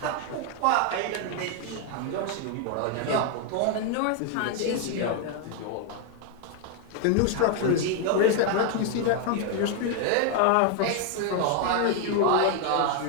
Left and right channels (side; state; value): both; different; correlation 0.01